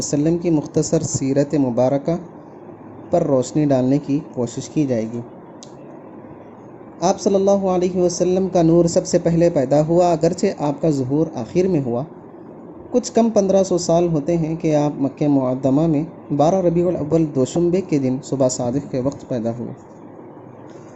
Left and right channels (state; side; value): identical; both; correlation 1.00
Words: کی مختصر سیرت مبارکہ پر روشنی ڈالنے کی کوشش کی جائے گی۔ آپ صلی اللہ علیہ وسلم کا نور سب سے پہلے پیدا ہوا، اگرچہ آپ کا ظہور آخر میں ہوا۔ کچھ کم 1500 سال ہوتے ہیں کہ آپ مکہ معظمہ میں 12 ربیع الاول دوشنبے کے دن صبح صادق کے وقت پیدا ہوئے۔